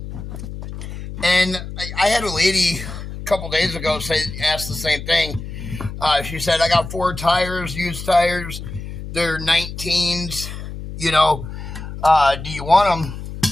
And I had a lady a couple days ago ask the same thing. She said, I got 4 tires, used tires. They're 19s. Do you want them?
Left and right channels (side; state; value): left; noise; hum, 9 dB below the sound